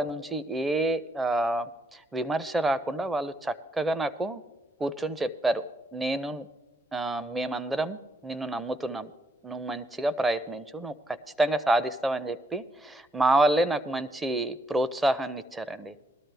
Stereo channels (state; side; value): normal; both; correlation 0.76